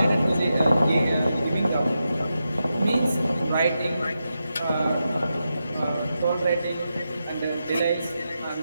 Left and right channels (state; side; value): inverted; both; correlation -0.88